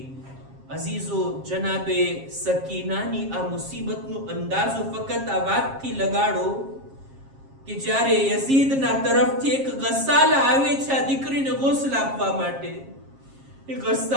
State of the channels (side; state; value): left; late; 7.4 ms